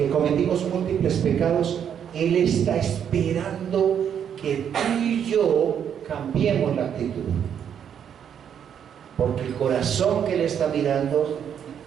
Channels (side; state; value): left; quieter; 8.6 dB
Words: cometimos múltiples pecados, Él está esperando que tú y yo cambiemos la actitud. Porque el corazón que Él está mirando,